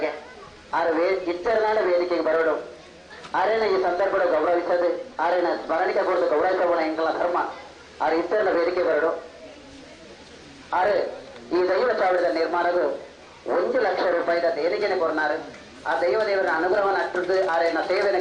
ಆರು ಇಚ್ಚರನಾಡ ವೇದಿಕೆಗೆ ಬರೋಡು ಆರೇನ ಈ ಸಂದರ್ಭ ಗೌರವಿಸದು ಆರೇನ ಸ್ಮರಣಿಕೆ ಕೊಡದು ಗೌರವಿಸೋಣ ಎಂಕಲ ಧರ್ಮ ಆರು ಇಚ್ಚರನ ವೇದಿಕೆ ಬರೋಡು. ಆರು ಈ ದೈವ ಚಾವಡಿದ ನಿರ್ಮಾಣದು 1 ಲಕ್ಷ ರೂಪಾಯಿದ ದೇಣಿಗೆನೆ ಕೊರ್ನಾರು ಆ ದೇವರ ಅನುಗ್ರಹವನ್ನು ಅಟ್ಟದ್ದು ಆರೇನ ಸೇವೆಯನ್ನು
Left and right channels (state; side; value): identical; both; correlation 1.00